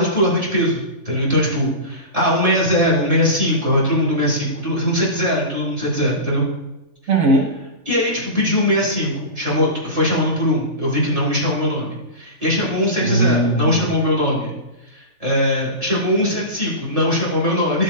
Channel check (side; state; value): left; late; 3.4 ms